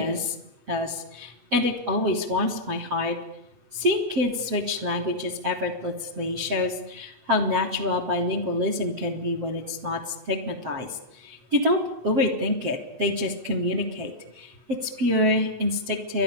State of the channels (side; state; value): left; late; 8.2 ms